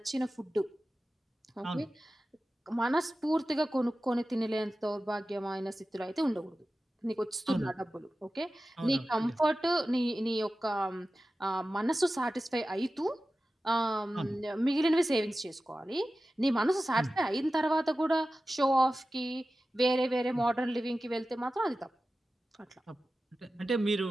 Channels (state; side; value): normal; both; correlation 0.94